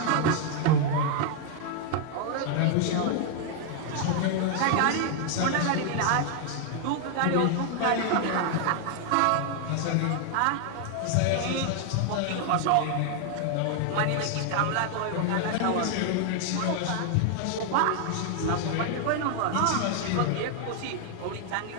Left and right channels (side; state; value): both; different; correlation 0.00